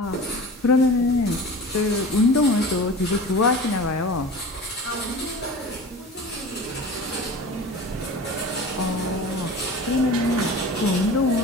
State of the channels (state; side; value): normal; both; correlation 0.37